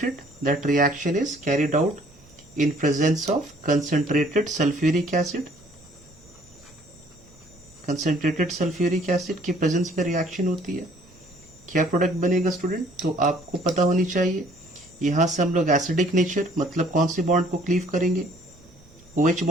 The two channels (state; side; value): normal; both; correlation 0.59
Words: that reaction is carried out in presence of concentrated sulfuric acid. concentrated sulfuric acid की presence में reaction होती है. क्या product बनेगा स्टूडेंट? तो आपको पता होनी चाहिए. यहाँ से हम लोग एसिडिक नेचर मतलब कौन सी बॉन्ड को क्लीव करेंगे? OH